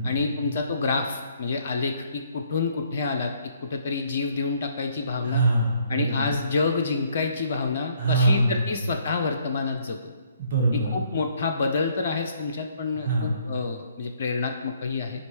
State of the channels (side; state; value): both; inverted; correlation -0.65